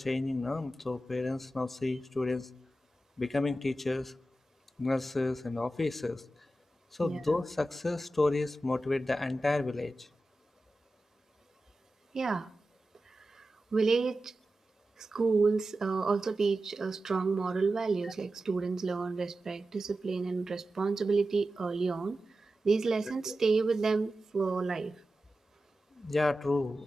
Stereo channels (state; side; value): normal; both; correlation 0.93